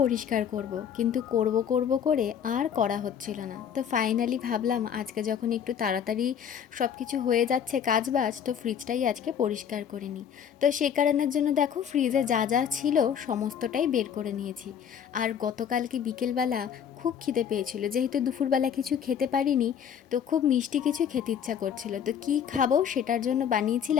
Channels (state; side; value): quieter; right; 8.3 dB